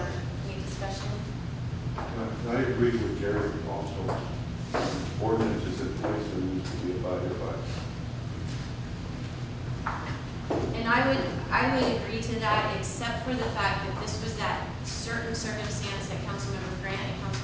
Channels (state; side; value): identical; both; correlation 1.00